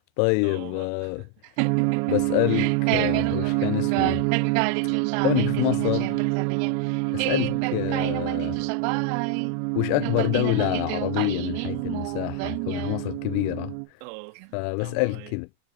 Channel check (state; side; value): different; both; correlation 0.00